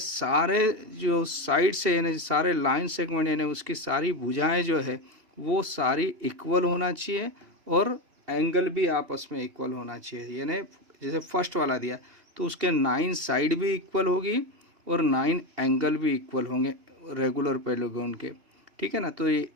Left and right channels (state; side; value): late; left; 2.7 ms